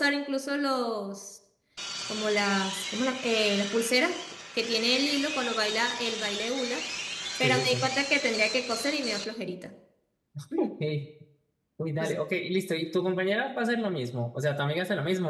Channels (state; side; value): identical; both; correlation 1.00